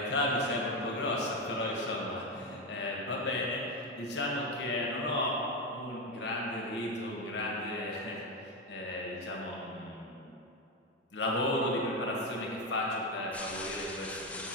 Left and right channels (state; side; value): normal; both; correlation 0.11